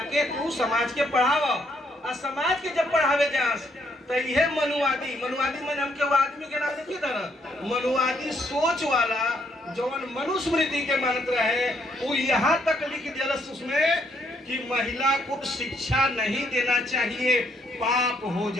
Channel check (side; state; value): both; normal; correlation 0.71